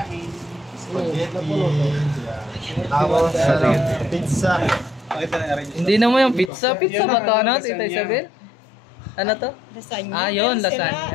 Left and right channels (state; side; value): drops out; right; at 6.5 s